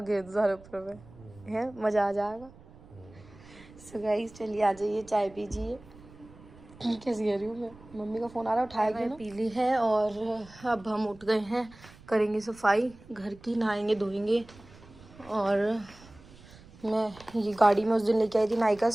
दो सारे ऊपर में, है मज़ा आ जाएगा। सो गाइस चलिए आ जाइए, चाय पीजिए। कैसी कह रही हूँ मैं, मम्मी का फ़ोन आ रहा है, उठाया गया, पी ली है। और अब हम उठ गए हैं, करेंगे सफाई घर की, नहाएंगे धोएंगे। और मैं ये गाड़ी में उस दिन लेके आई थी नायका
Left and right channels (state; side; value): noise; right; rumble, 22 dB below the sound